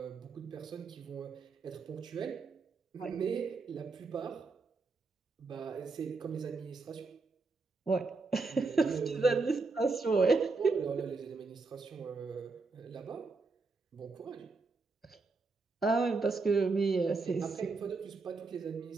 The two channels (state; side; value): quieter; left; 4.0 dB